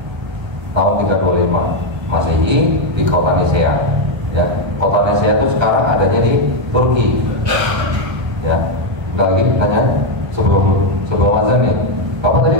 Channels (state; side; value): late; left; 1.3 ms